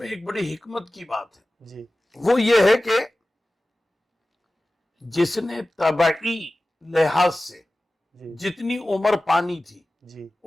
ایک بڑی حکمت کی بات ہے، وہ یہ ہے کہ جس نے طبعی لحاظ سے جتنی عمر پانی تھی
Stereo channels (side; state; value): both; normal; correlation 0.96